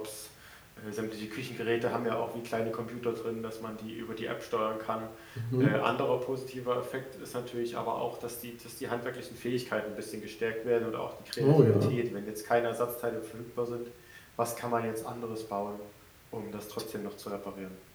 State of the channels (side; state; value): both; identical; correlation 1.00